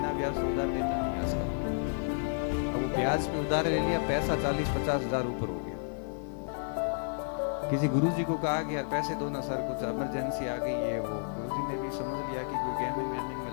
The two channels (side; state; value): right; silent; digital silence